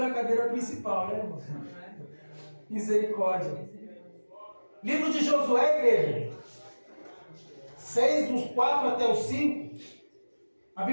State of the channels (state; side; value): inverted; both; correlation -1.00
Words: cadeira principal, né, irmão? Misericórdia. Livro de Josué, igreja. 6, dos 4 até os 5. A